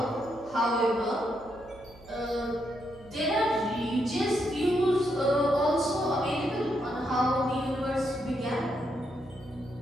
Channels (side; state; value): right; noise; hum, 23 dB below the sound